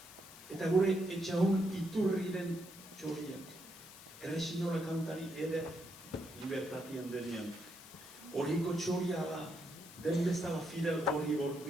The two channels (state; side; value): noise; left; hiss, 17 dB below the sound